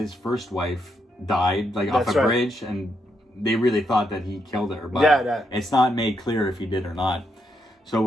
first wife died off a bridge, and they really thought that he killed her, but it's not made clear if he did or not.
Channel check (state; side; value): normal; both; correlation 0.79